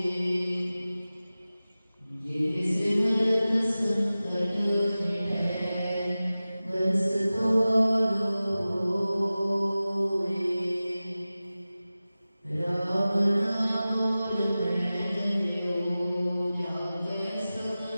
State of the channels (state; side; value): inverted; both; correlation -0.96